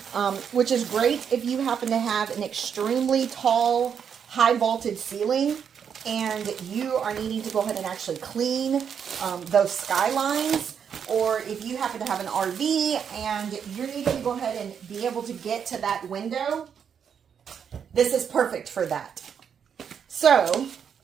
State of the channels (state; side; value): quieter; left; 7.5 dB